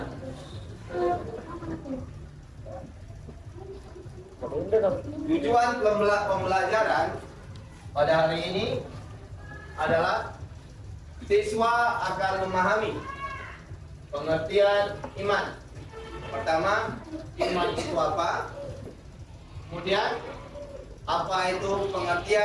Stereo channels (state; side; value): identical; both; correlation 1.00